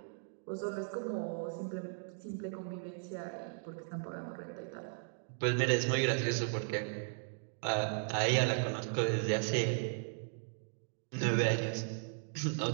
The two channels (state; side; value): silent; left; digital silence